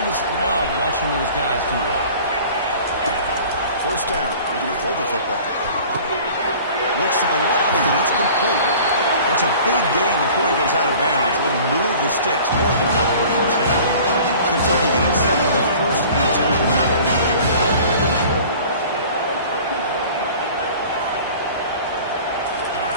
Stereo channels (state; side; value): inverted; both; correlation -0.45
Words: just love watching those guys do well. First down. They're going to throw the football. Looks to the left, and it's complete. That's a big gain before he goes out of bounds. It'll move the sticks. More than enough for a first down. Kentucky getting set for the 1st and 10 from now.